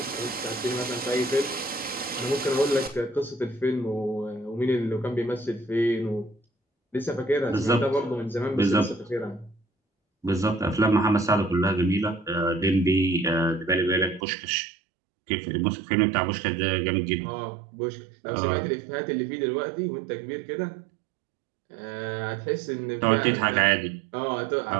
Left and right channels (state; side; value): drops out; left; at 14.2 s